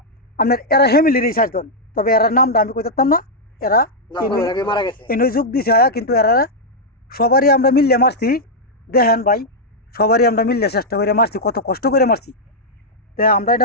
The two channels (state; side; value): normal; both; correlation -0.04